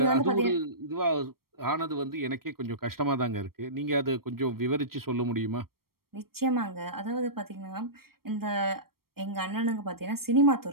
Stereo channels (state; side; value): late; left; 0.94 ms